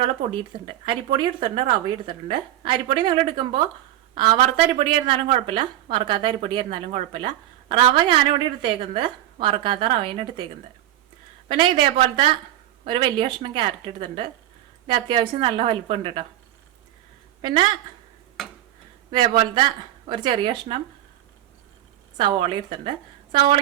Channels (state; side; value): quieter; left; 13.3 dB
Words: പൊടി എടുത്തിട്ടുണ്ട്. അരിപ്പൊടി എടുത്തിട്ടുണ്ട്, റവ എടുത്തിട്ടുണ്ട്. അരിപ്പൊടി നിങ്ങൾ എടുക്കുമ്പോൾ വറുത്ത അരിപ്പൊടി ആയിരുന്നാലും കുഴപ്പമില്ല, വറുക്കാത്ത അരിപ്പൊടി ആയിരുന്നാലും കുഴപ്പമില്ല. റവ ഞാനിവിടെ എടുത്തേക്കുന്നത് വറുക്കാത്ത റവയാണ് എടുത്തേക്കുന്നത്. പിന്നെ ഇതേപോലത്തെ ഒരു വലിയ കഷ്ണം ക്യാരറ്റ് എടുത്തിട്ടുണ്ട്. ഇത് അത്യാവശ്യം നല്ല വലിപ്പമുണ്ട് കേട്ടോ. പിന്നെ ഇതേപോലത്തെ ഒരു ചെറിയ കഷ്ണം സവോള എടുത്തിട്ടുണ്ട്.